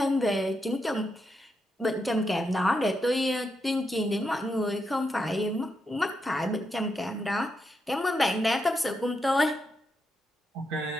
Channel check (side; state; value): both; normal; correlation 0.83